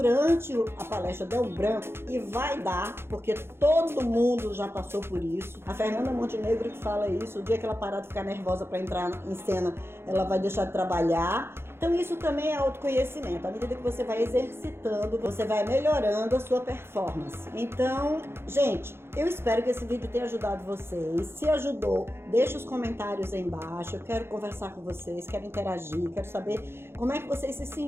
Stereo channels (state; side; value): late; left; 0.12 ms